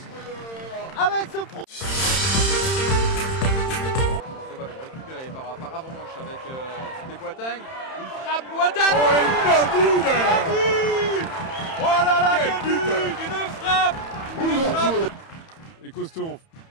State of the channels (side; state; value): right; late; 31 ms